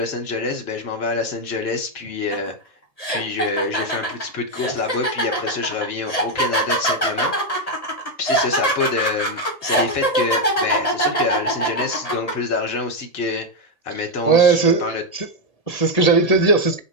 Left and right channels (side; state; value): right; late; 1.8 ms